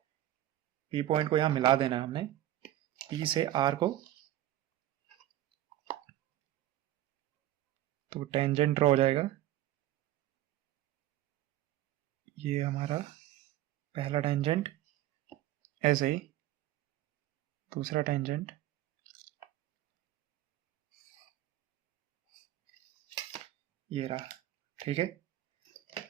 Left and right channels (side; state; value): left; quieter; 13.9 dB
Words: पी पॉइंट को यहां मिला देना है हमने, पी से आर को। तो टेंजेंट ड्रॉ हो जाएगा, ये हमारा पहला टेंजेंट, ऐसे ही दूसरा टेंजेंट, ये रहा। ठीक है,